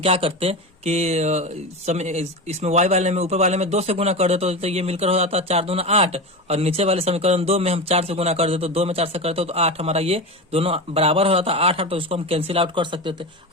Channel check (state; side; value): normal; both; correlation 0.22